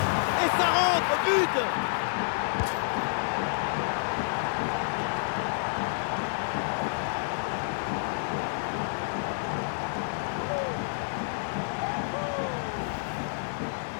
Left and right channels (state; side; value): silent; right; digital silence